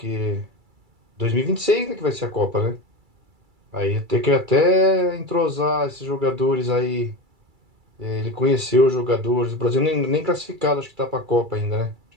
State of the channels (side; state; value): left; late; 2.3 ms